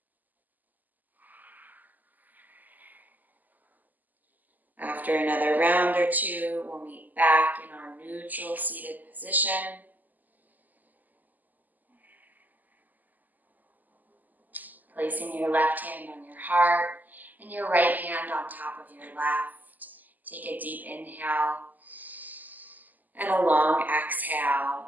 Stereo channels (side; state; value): left; late; 0.083 ms